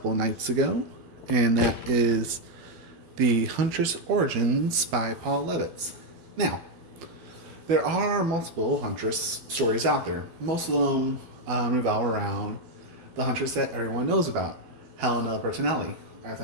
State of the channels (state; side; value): late; left; 12 ms